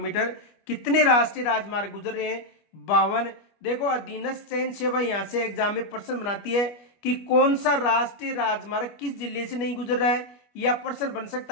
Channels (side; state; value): right; late; 25 ms